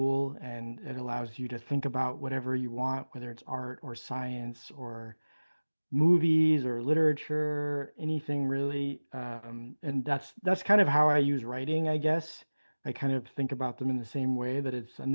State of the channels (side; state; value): both; inverted; correlation -1.00